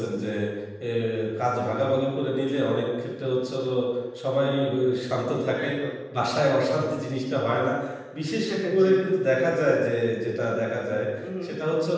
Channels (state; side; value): identical; both; correlation 1.00